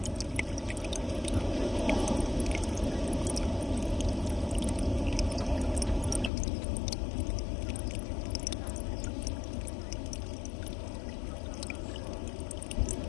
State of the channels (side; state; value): right; drops out; at 6.3 s